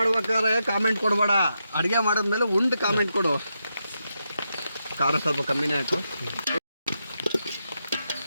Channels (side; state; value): both; inverted; correlation -0.85